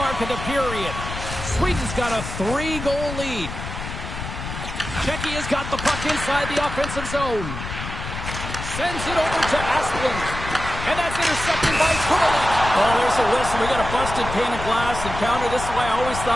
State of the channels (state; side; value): noise; left; rumble, 8 dB below the sound